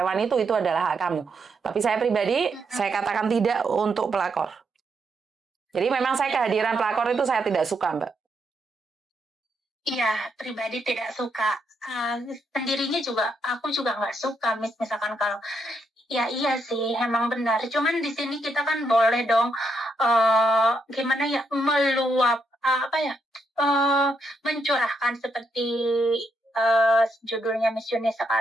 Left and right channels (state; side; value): normal; both; correlation 0.78